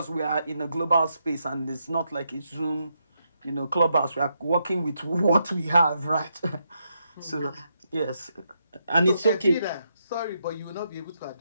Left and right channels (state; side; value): inverted; both; correlation -0.81